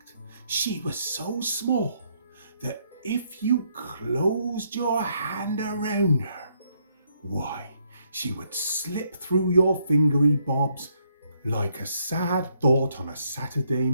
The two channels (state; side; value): inverted; both; correlation -0.72